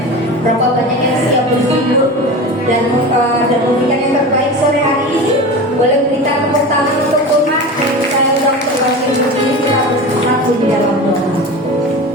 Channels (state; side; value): normal; both; correlation 0.30